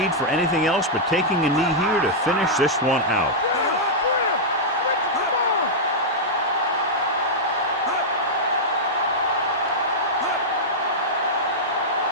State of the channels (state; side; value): normal; both; correlation -0.08